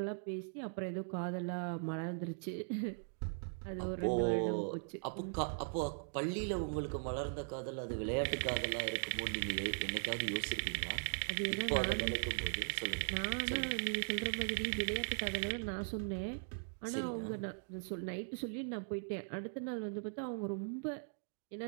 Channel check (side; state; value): left; silent; digital silence